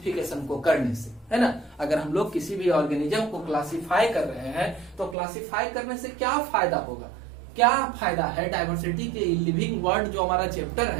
को करने से, है ना? अगर हम लोग किसी भी ऑर्गेनिज्म को क्लासिफाई कर रहे हैं तो क्लासिफाई करने से क्या फायदा होगा, क्या फायदा है? डाइवर्सिटी के लिविंग वर्ल्ड जो हमारा चैप्टर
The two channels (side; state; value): left; drops out; at 5.2 s